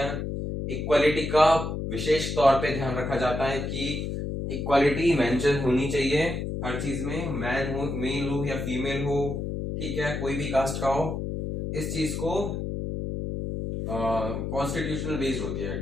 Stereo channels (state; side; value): noise; left; hum, 3 dB below the sound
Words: इक्वालिटी का विशेष तौर पे ध्यान रखा जाता है कि इक्वालिटी मेंशन होनी चाहिए हर चीज में, मैन हो, मेल हो या फीमेल हो, ठीक है, कोई भी कास्ट का हो। इस चीज को कॉन्स्टिट्यूशनल बेस्ड होती है,